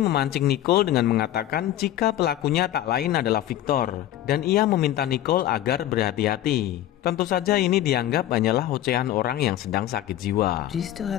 Nicole dengan mengatakan jika pelakunya tak lain adalah Victor, dan ia meminta Nicole agar berhati-hati. Tentu saja ini dianggap hanyalah ocehan orang yang sedang sakit jiwa. Do you still have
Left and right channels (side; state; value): right; quieter; 13.0 dB